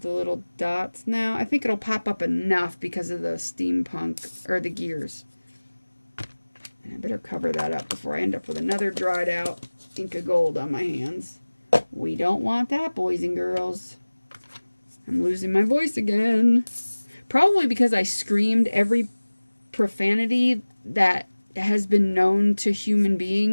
the little dots? No, I think it'll pop up enough because of the steampunk, or the gears. And I better cover that up before I end up with another dried out ink of gold on my hands. We don't want that, boys and girls. I'm losing my voice again. Probably because I screamed every profanity that has been known to human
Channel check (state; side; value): inverted; both; correlation -1.00